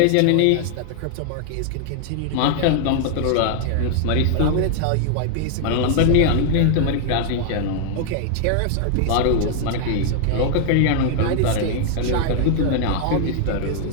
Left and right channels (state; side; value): different; both; correlation -0.01